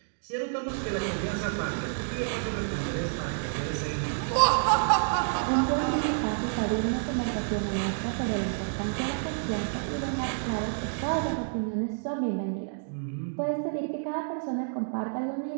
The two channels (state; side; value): silent; left; digital silence